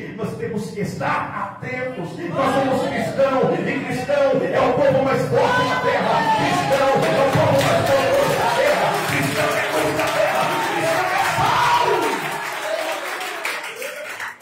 nós temos que estar atentos. Nós somos cristãos, e cristão é o povo mais forte da terra. Cristão é o povo mais poderoso da terra. Cristão é luz da terra. Cristão é sal.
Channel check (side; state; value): both; identical; correlation 1.00